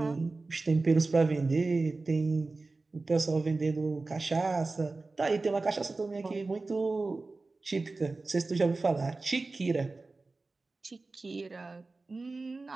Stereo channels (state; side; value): quieter; left; 3.5 dB